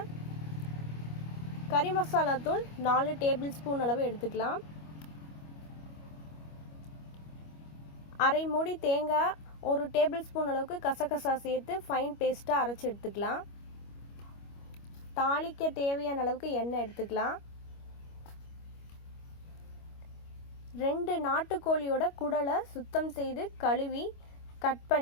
கறி மசாலா தூள் 4 டேபிள் ஸ்பூன் அளவு எடுத்துக்கலாம். அரை மூடி தேங்காய், 1 டேபிள் ஸ்பூன் அளவுக்கு கசகசா சேர்த்து ஃபைன் பேஸ்ட்டாக அரைச்சி எடுத்துக்கலாம். தாளிக்க தேவையான அளவுக்கு எண்ணெய் எடுத்துக்கலாம். 2 நாட்டுக்கோழியோட குடலை சுத்தம் செய்து கழுவி கட்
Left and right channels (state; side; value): late; right; 25 ms